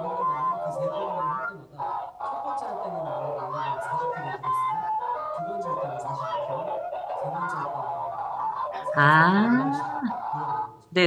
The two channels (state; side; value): identical; both; correlation 1.00